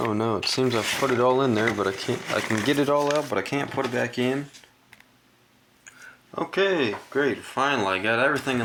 no, it seems I've put it all in there, but I can get it all out, but I can't put it back in. Okay, great. Finally, I got everything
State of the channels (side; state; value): both; identical; correlation 1.00